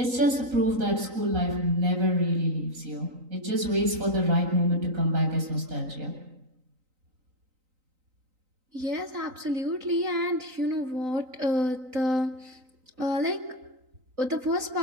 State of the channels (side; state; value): left; late; 3.9 ms